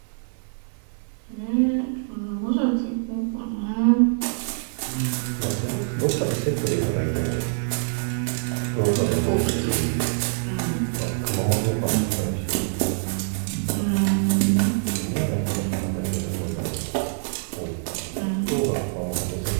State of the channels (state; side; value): silent; left; 61 dB below the other